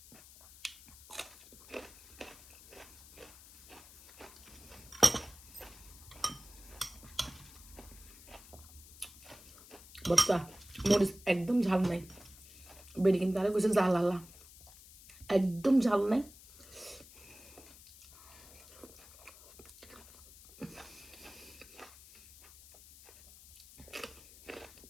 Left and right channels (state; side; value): noise; left; hiss, 20 dB below the sound